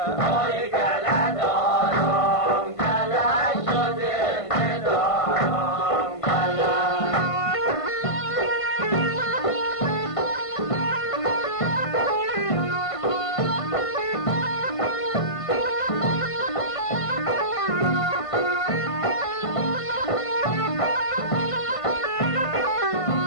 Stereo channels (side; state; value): right; late; 1.5 ms